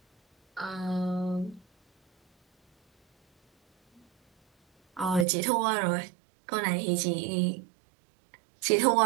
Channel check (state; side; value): drops out; left; at 5.2 s